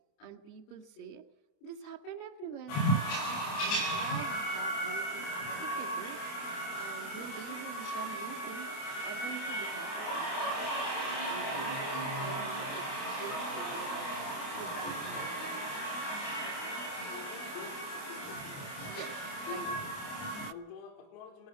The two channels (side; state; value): right; late; 28 ms